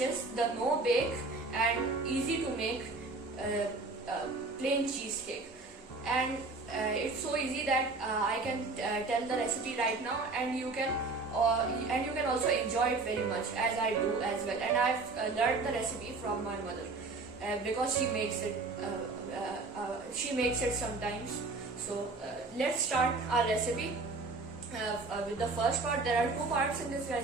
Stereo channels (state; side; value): quieter; left; 3.6 dB